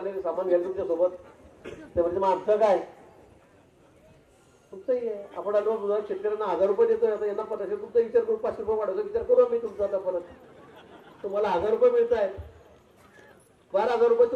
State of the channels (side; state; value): both; identical; correlation 1.00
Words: सामान घ्यायला तुमच्या सोबत ते म्हणजे मग आमचं काय तुमचंही आहे. आपण आलो शेतकऱ्यांना 1,000 रुपये देतोय आता यांना 500 तुमचा विचार करू 500 रुपये वाढवतो विचार करू आम्ही तुमचा आता परत तुम्हाला 1,000 रुपये मिळत आहेत 12,000 रुपये